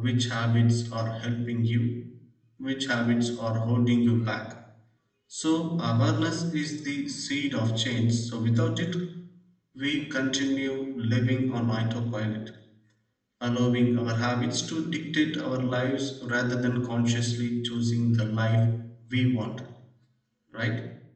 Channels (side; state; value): both; identical; correlation 1.00